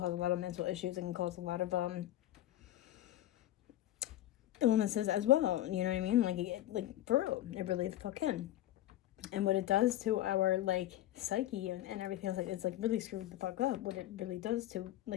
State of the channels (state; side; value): quieter; right; 13.9 dB